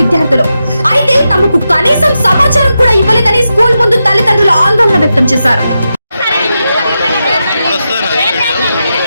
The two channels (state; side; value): inverted; both; correlation -0.88